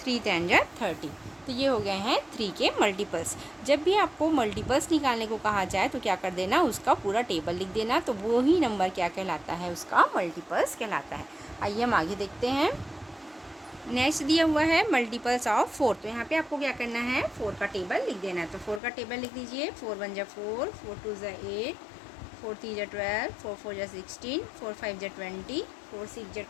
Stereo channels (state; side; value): drops out; right; at 18.8 s